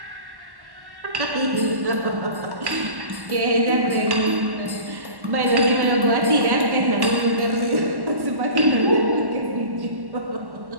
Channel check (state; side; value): late; left; 1.1 ms